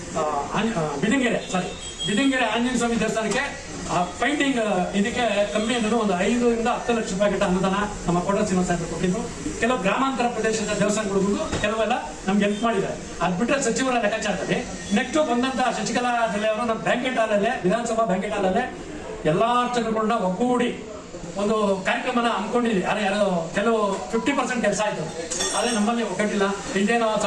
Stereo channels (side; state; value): both; identical; correlation 1.00